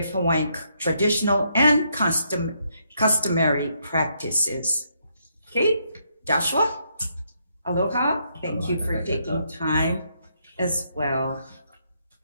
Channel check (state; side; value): inverted; both; correlation -0.76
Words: Hawaiian traditional and customary practices. Okay, Joshua, aloha. Thank you for taking time as well.